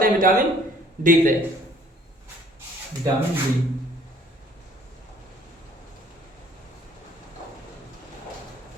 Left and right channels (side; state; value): both; normal; correlation 0.58